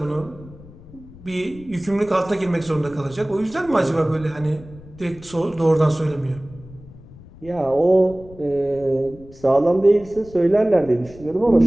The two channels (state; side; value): noise; left; rumble, 20 dB below the sound